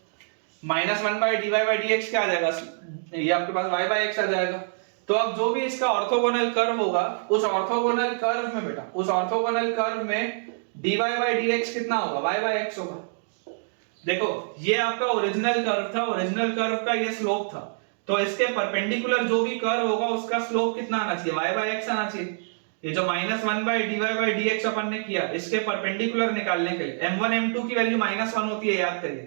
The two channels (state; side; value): silent; left; digital silence